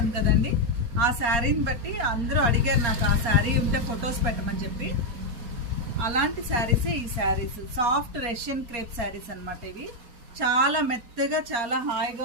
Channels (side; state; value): left; late; 4.2 ms